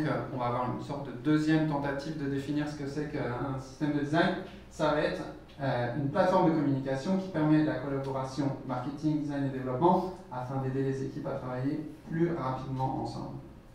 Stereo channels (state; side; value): identical; both; correlation 1.00